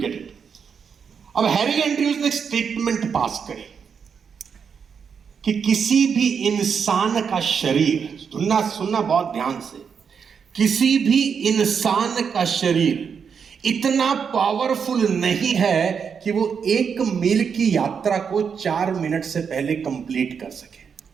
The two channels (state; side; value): quieter; left; 6.6 dB